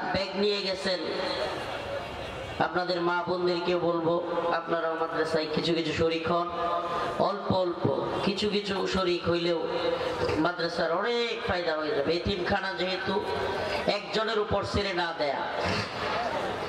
ব্যাগ নিয়ে গেছেন, আপনাদের মা বোনদেরকেও বলবো, আপনারাও মাদ্রাসায় কিছু কিছু শরীক হন। অল্প অল্প কিছু কিছু শরীক হইলেও মাদ্রাসার অনেক ফায়দা হয়ে যাবে। এতিমখানা যেহেতু একজনের উপর ছেড়ে না দেয়া,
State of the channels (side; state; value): both; identical; correlation 1.00